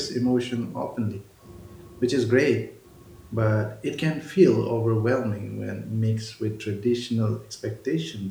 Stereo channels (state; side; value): identical; both; correlation 1.00